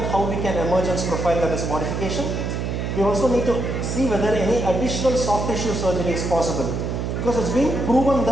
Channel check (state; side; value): noise; right; hum, 2 dB below the sound